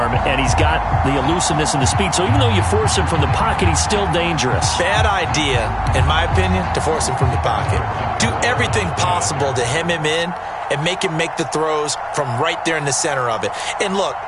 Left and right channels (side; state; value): both; identical; correlation 1.00